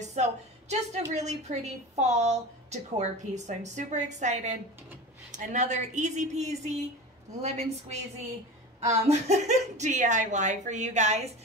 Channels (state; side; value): normal; both; correlation 0.30